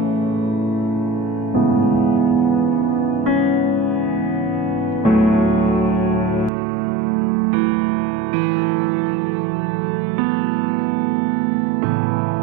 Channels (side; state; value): left; drops out; at 6.5 s